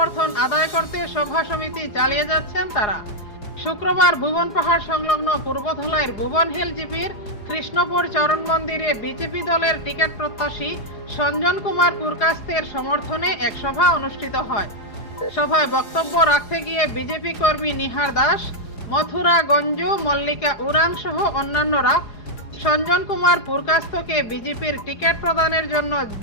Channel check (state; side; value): late; right; 4.8 ms